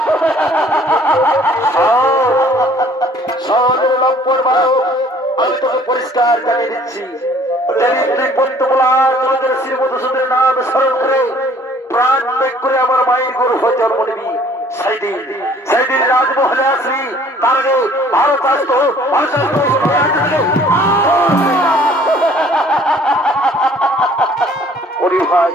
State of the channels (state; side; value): normal; both; correlation 0.56